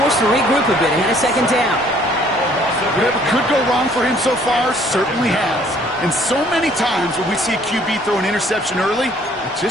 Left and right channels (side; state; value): both; normal; correlation 0.60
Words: to regroup a bit ahead of 2nd down. Whatever could go wrong for him so far certainly has. And so many times when we see a QB throw an interception early, it